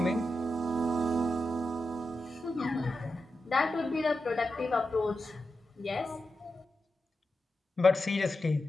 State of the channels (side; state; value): both; normal; correlation 0.89